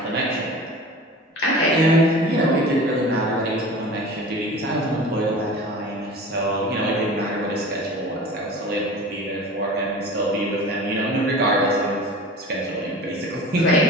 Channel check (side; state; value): both; normal; correlation 0.38